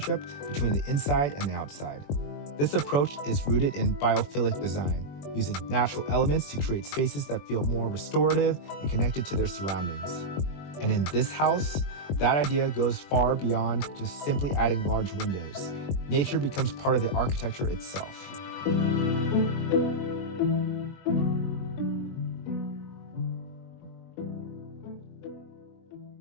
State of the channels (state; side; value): late; right; 21 ms